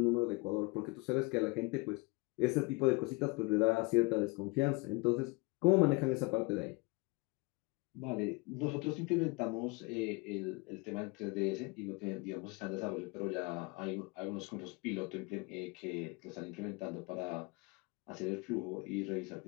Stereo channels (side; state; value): right; quieter; 27.0 dB